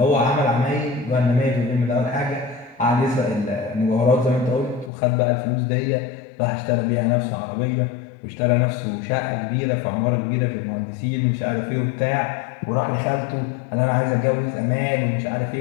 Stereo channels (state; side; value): drops out; right; at 4.9 s